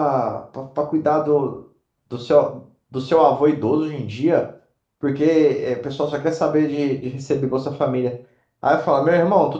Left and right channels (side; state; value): both; identical; correlation 1.00